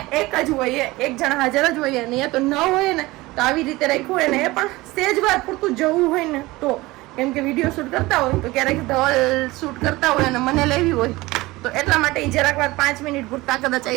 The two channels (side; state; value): left; quieter; 20.3 dB